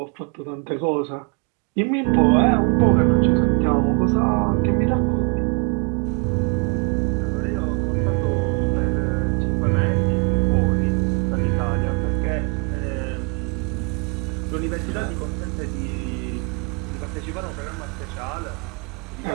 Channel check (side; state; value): left; quieter; 34.7 dB